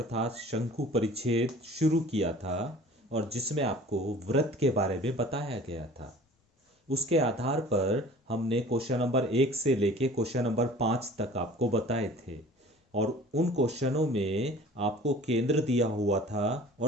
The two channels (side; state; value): both; normal; correlation 0.46